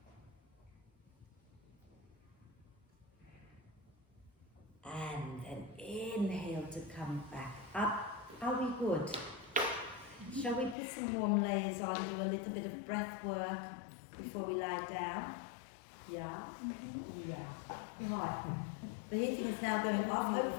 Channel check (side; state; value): right; drops out; at 10.8 s